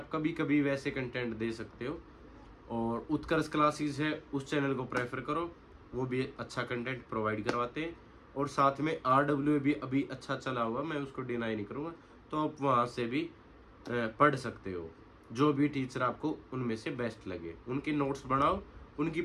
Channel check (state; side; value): identical; both; correlation 1.00